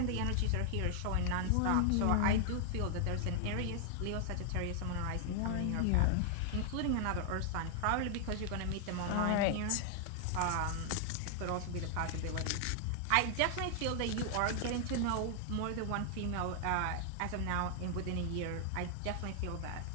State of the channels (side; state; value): both; different; correlation 0.00